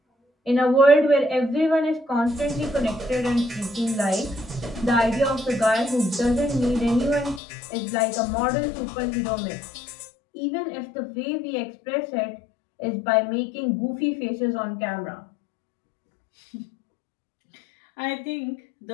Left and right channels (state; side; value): drops out; right; at 7.4 s